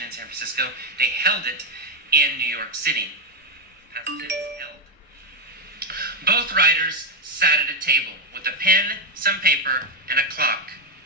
in San Francisco. They held it in New York City. Past tense, held. Both writers sat at a table with a pen, some paper, and a clock.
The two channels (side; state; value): both; normal; correlation 0.04